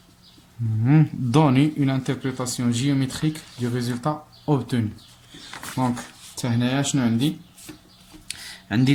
Donner une interprétation géométrique du résultat obtenu. دونك حتى هنايا شنو عندي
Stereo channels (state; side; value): identical; both; correlation 1.00